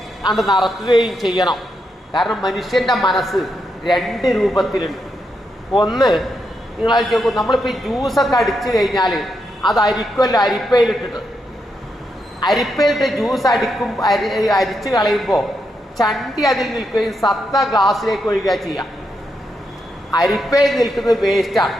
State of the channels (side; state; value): both; normal; correlation 0.82